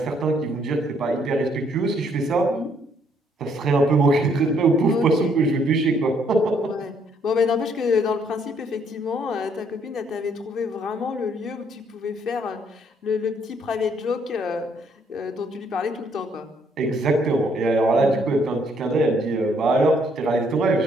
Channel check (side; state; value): both; normal; correlation 0.68